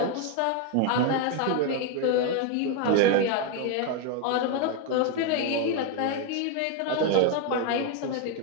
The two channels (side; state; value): both; different; correlation 0.01